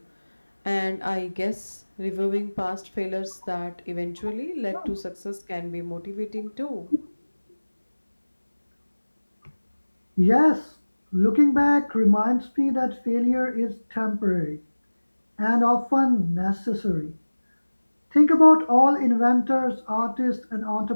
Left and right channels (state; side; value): inverted; both; correlation -1.00